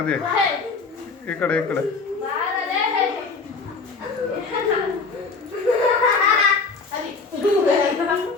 ಈ ಕಡೆ ಈ ಕಡೆ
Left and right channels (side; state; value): right; quieter; 4.4 dB